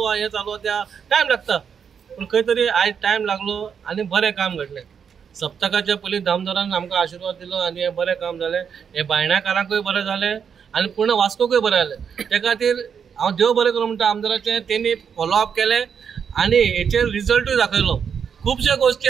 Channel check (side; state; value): left; quieter; 7.1 dB